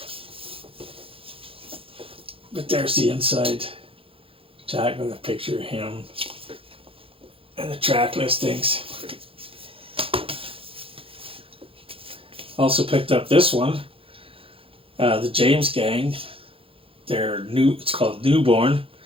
But there's the inside jack with a picture of him and the track listings. Also picked up this one, the James Gang. It's called Newborn.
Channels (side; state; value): left; late; 0.27 ms